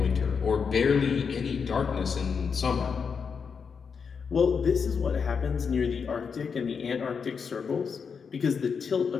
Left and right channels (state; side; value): quieter; right; 6.0 dB